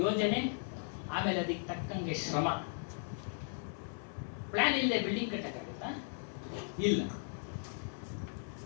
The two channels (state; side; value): silent; right; digital silence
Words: ಯೋಜನೆ, ಆಮೇಲೆ ಅದಕ್ಕೆ ತಕ್ಕಂಗೆ ಶ್ರಮ. ಪ್ಲಾನ್ ಇಲ್ಲದೆ ಬಿಲ್ಡಿಂಗ್ ಕಟ್ಟಕ್ಕಾಗುತ್ತಾ? ಇಲ್ಲ.